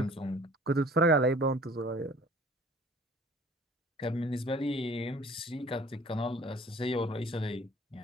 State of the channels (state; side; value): normal; both; correlation 0.51